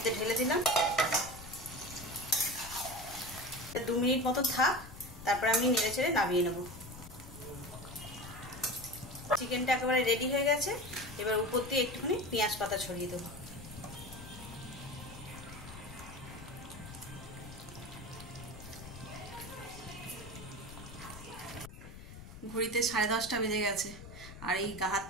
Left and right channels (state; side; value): noise; left; rumble, 14 dB below the sound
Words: ঢেলে দিলাম। 2 মিনিট মতো থাক, তারপর আমি নেড়ে চেড়ে নামিয়ে নেব। চিকেনটা একেবারে রেডি হয়ে গেছে। এবার উপর দিয়ে একটুখানি পেঁয়াজ পাতা ছড়িয়ে দেবো। ঘড়িতে 10:30 বেজে গেছে, আর এই গা হাত